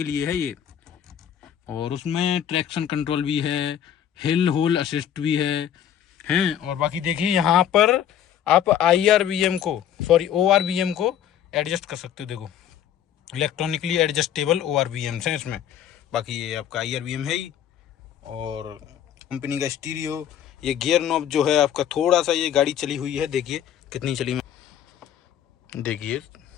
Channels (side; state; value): right; quieter; 9.9 dB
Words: लिए है ये। और उसमें ट्रैक्शन कंट्रोल भी है, हिल होल असिस्ट भी है। और बाकी देखिए यहाँ पर आप ORVM को एडजस्ट कर सकते हो। देखो इलेक्ट्रॉनिकली एडजस्टेबल ORVMs हैं इसमें। बाकी ये आपका IRVM है ही, और कंपनी का स्टीरियो। ये गियर नॉब जो है आपका थोड़ा सा, ये गाड़ी चली हुई है, देखिए कितनी चली, देखिए